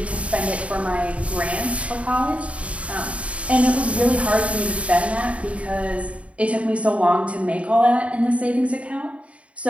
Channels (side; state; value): left; late; 0.064 ms